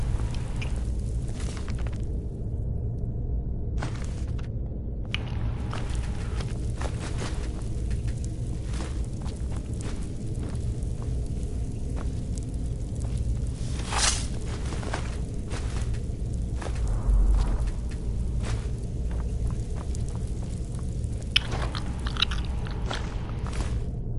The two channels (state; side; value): identical; both; correlation 1.00